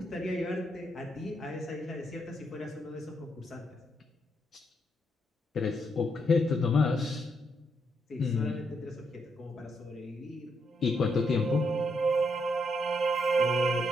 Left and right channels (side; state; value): both; normal; correlation 0.78